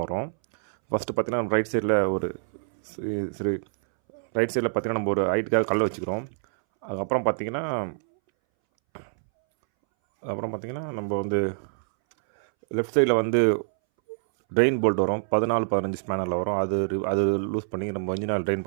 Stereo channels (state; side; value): silent; left; 61 dB below the other